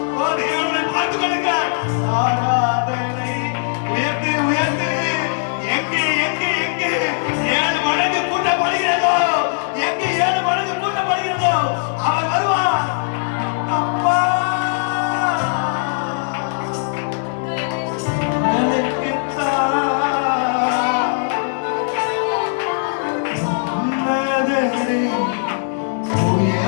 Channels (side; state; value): right; silent; 66 dB below the other